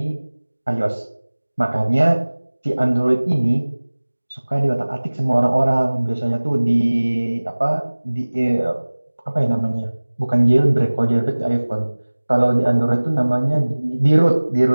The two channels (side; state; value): both; inverted; correlation -1.00